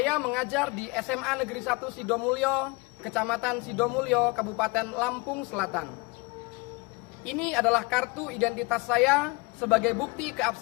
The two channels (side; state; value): right; quieter; 27.0 dB